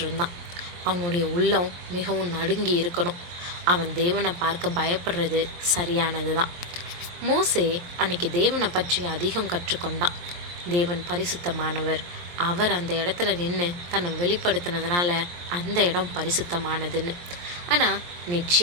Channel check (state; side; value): late; left; 23 ms